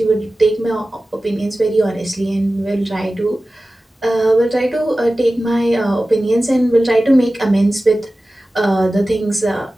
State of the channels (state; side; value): normal; both; correlation 0.96